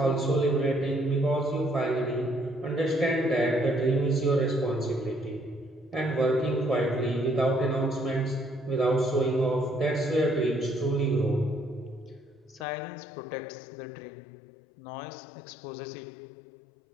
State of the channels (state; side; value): drops out; right; at 12.7 s